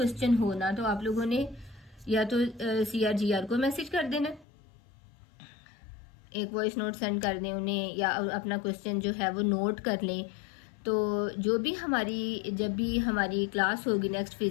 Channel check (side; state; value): right; drops out; at 4.5 s